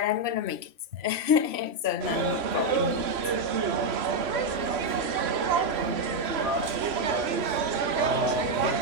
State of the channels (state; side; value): late; left; 3.0 ms